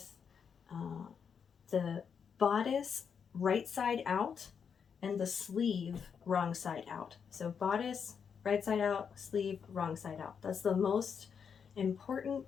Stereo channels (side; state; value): right; quieter; 6.8 dB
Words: the bodice right side out and the sleeve wrong side out. So bodice right side out, sleeve wrong side out. That's the most important